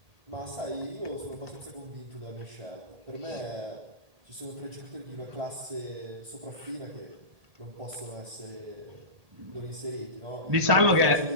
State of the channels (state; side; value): late; left; 1.8 ms